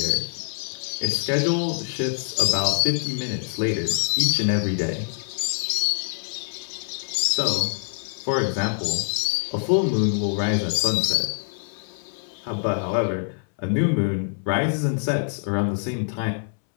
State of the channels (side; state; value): right; silent; 62 dB below the other